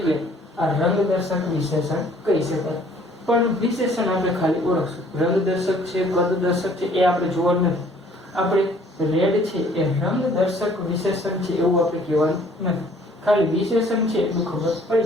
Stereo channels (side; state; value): both; normal; correlation 0.58